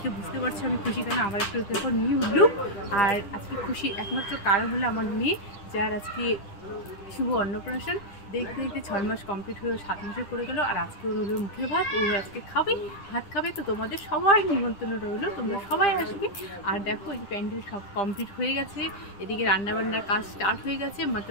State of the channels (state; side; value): late; right; 10 ms